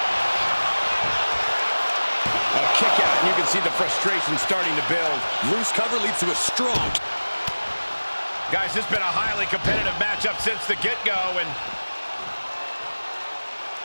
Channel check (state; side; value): inverted; both; correlation -1.00